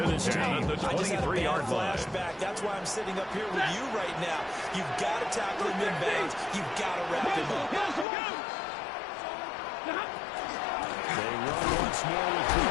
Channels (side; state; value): right; drops out; at 8.1 s